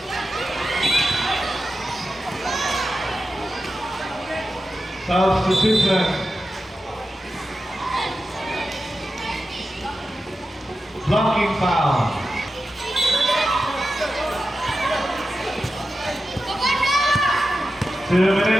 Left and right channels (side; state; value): both; normal; correlation 0.91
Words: substitution. Blocking foul. Two